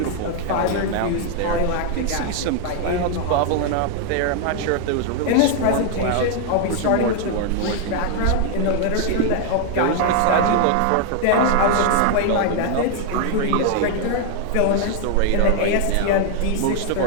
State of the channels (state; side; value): different; both; correlation 0.00